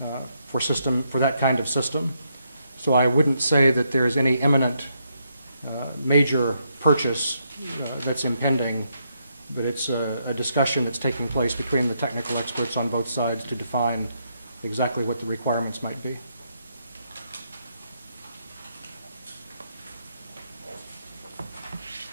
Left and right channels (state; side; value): inverted; both; correlation -0.77